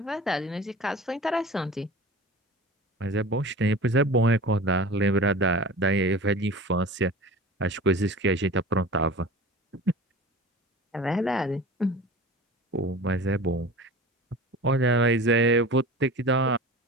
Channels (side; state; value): both; normal; correlation 0.37